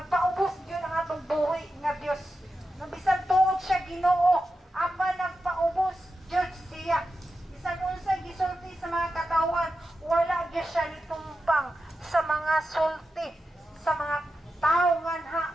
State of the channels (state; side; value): normal; both; correlation 0.90